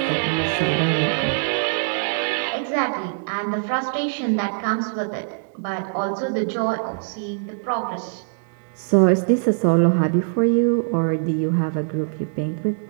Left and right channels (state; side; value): silent; left; digital silence